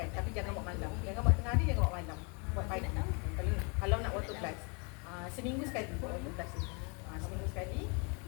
Tapi jangan buat malam. Jangan buat tengah hari, jangan buat malam. Buat pagi. Kalau nak water blast. Seminggu sekali buat water blast ni. Seminggu sekali.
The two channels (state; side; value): quieter; right; 33.8 dB